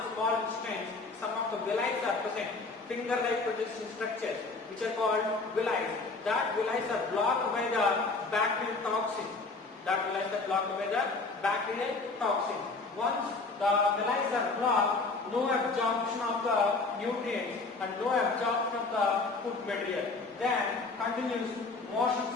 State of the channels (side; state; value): right; quieter; 3.7 dB